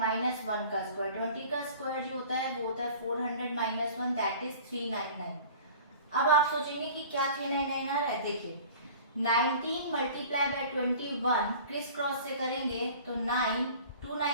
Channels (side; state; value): both; inverted; correlation -0.44